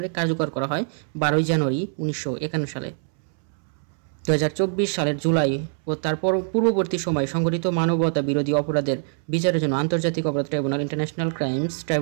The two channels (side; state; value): left; silent; 63 dB below the other